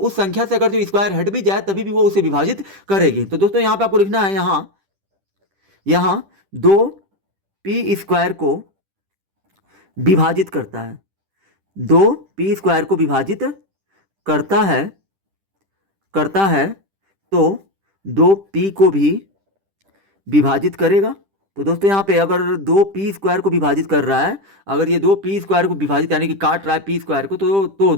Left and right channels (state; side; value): late; left; 10 ms